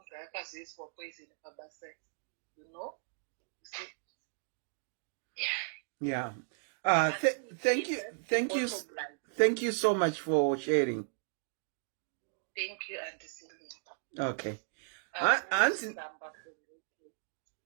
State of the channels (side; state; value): left; silent; digital silence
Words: akazoiswa poison pabasa. You know? You see? Yeah. Thank you so much for sharing. Thank you, Auntie Celine. Okay.